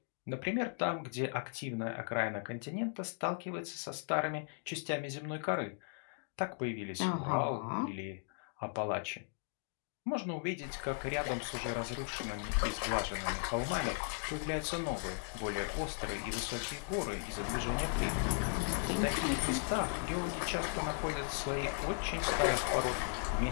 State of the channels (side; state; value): right; silent; 53 dB below the other